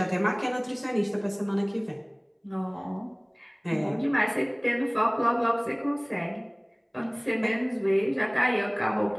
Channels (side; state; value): both; identical; correlation 1.00